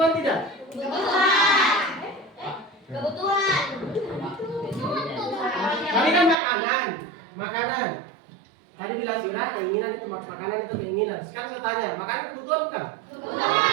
tidak? Kebutuhan. Tadi kan makanan. Tadi bilang Sirah keinginan itu makanan itu keinginan. Sekarang saya tanya, makanan kebutuhan bukan?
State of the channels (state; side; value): drops out; left; at 6.4 s